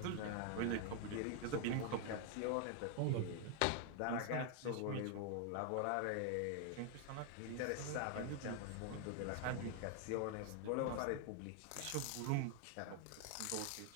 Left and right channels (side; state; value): both; different; correlation 0.00